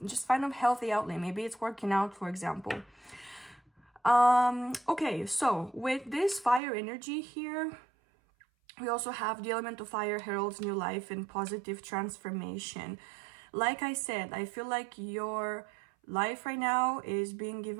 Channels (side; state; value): left; drops out; at 6.6 s